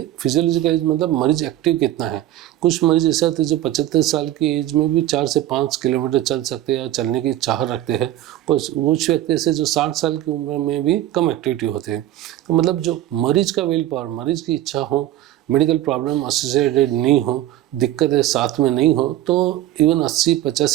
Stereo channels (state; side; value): quieter; left; 13.8 dB